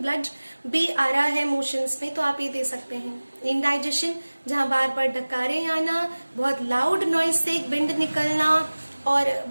भी आ रहा है मोशंस में, तो आप ये दे सकते हैं। इनडाइजेशन, जहां बार बार डकारे आना, बहुत लाउड नॉइज से एक बिंड निकलना, और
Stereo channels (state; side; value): inverted; both; correlation -1.00